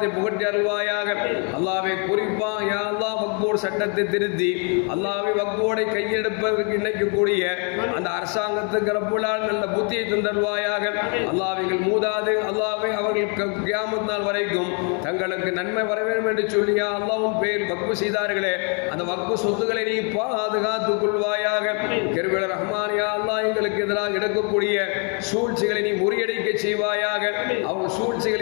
புகட்டி அருள்வாயாக. அல்லாஹ்வை குறிப்பாக யா அல்லாஹ் வக்ஃபோர்டு சட்டத்தை திருத்தி அல்லாஹ்வை வக்ஃபோர்டை கையெடுப்பதற்கு நினைக்கக்கூடிய அந்த அரசாங்கத்துக்கு ரப்புல்லாஹ் நல்ல புத்தியை தந்தருள்வாயாக. அல்லாஹ்விகள் மூதாது அல்லாஹ்வை அவர்கள் கியாமத் நாள் வரைக்கும் தங்களுக்கு நன்மை வர வேண்டும் என்று சொல்லி யா அல்லாஹ்வின் பேர் வக்ஃபு செய்தார்களே அந்த வக்ஃபு சொத்துக்களை நீ பாதுகாத்துக் கொள்வாயாக. கிருபையில் ரஹ்மான் யா அல்லாஹ் எங்களுக்கு எதிராக எடுக்கக்கூடிய சூழ்ச்சிகளை நீ முறியடிக்க செய்வாயாக. அவங்க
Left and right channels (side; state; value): right; quieter; 38.0 dB